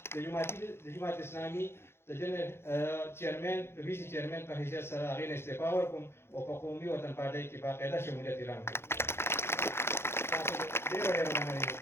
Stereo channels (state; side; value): late; right; 0.12 ms